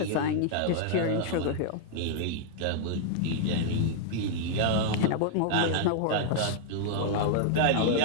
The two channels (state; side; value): different; both; correlation -0.01